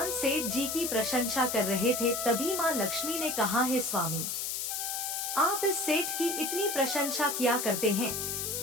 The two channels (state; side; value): noise; left; hiss, 2 dB below the sound